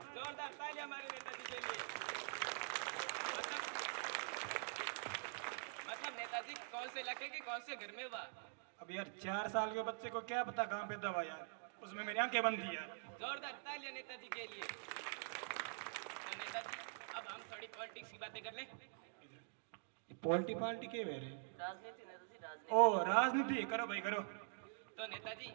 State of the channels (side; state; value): left; silent; digital silence